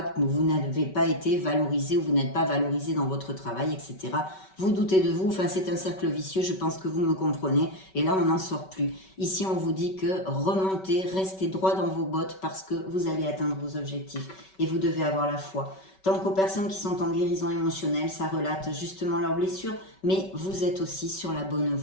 que vous n'avez pas été valorisé ou vous n'êtes pas valorisé dans votre travail, etc. Vous doutez de vous, enfin c'est un cercle vicieux, je pense que vous me comprenez, et là on n'en sort plus. Ici on vous dit que remontez, restez droit dans vos bottes parce que vous allez atteindre vos objectifs, et vous devez avoir la foi. Tant qu'aux personnes qui sont en guérison émotionnelle, ça relate justement leurs blessures, mais vous êtes aussi sur la bonne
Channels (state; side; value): late; right; 5.3 ms